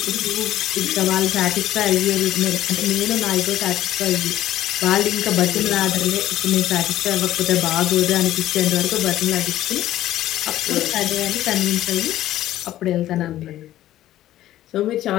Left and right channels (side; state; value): right; quieter; 13.7 dB